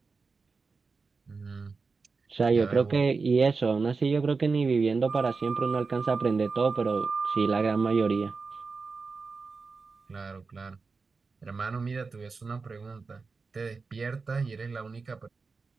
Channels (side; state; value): left; quieter; 4.5 dB